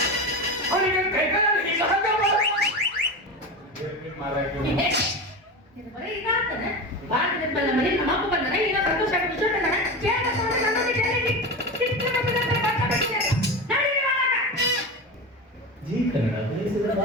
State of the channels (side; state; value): both; normal; correlation 0.24